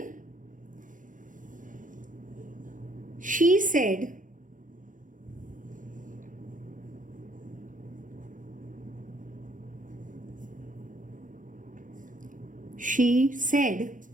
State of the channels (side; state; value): left; late; 0.38 ms